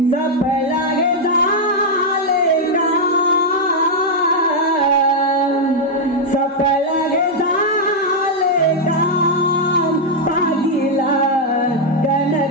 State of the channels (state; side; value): normal; both; correlation -0.02